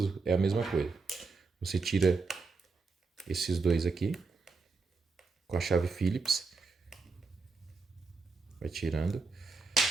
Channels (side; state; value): left; quieter; 4.2 dB